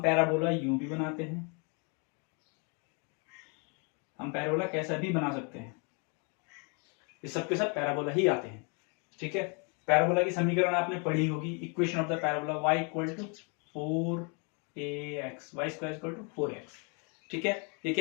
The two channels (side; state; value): right; quieter; 35.0 dB